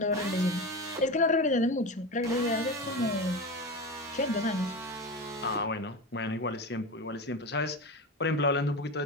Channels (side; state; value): both; normal; correlation 0.24